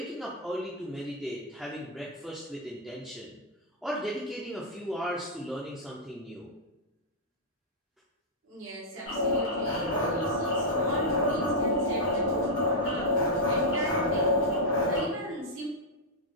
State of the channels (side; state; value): both; normal; correlation -0.07